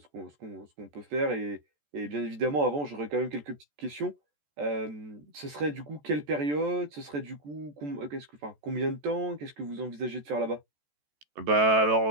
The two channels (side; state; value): left; late; 14 ms